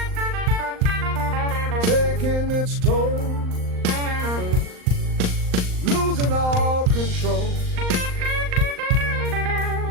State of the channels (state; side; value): late; left; 39 ms